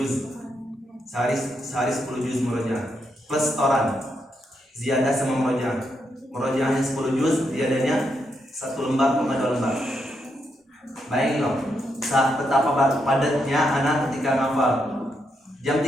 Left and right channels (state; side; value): normal; both; correlation 0.80